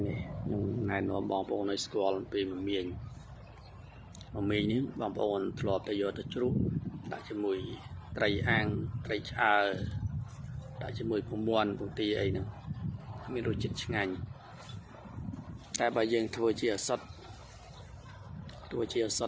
នេះខ្ញុំណែនាំបងប្អូនឲ្យស្គាល់ពីមមាញនេះបងប្អូនធ្លាប់តែយកទៅជ្រូកដាក់ជាមួយត្រីអាំងត្រីឆ្អើរដាក់ជាមួយពងមាន់ពងទាអីហ្នឹងមានរសជាតិឆ្ងាញ់តែបើយើងធ្វើជាអសុទ្ធ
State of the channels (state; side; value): identical; both; correlation 1.00